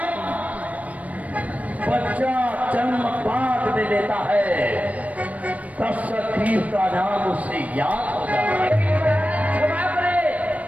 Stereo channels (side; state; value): left; late; 0.069 ms